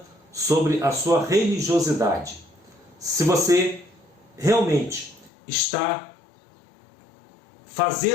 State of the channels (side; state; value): right; drops out; at 5.3 s